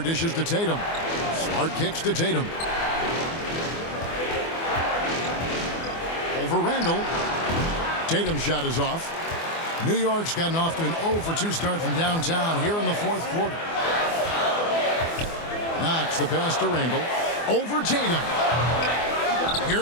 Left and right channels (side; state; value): right; late; 24 ms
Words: dishes to Tatum. Smart kicks to Tatum. Over Randall. Tatum's shot is off. New York's gotten off to an 0-for-2 start from downtown here in the 4th quarter. Knox the pass to Randall. Over Tatum.